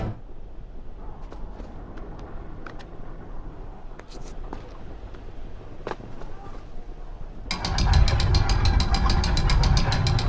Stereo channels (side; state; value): both; identical; correlation 1.00